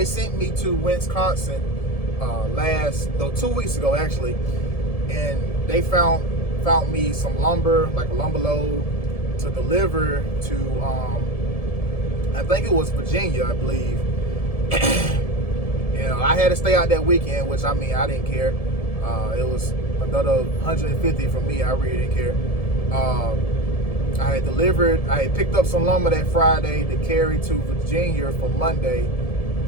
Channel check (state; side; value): late; right; 1.7 ms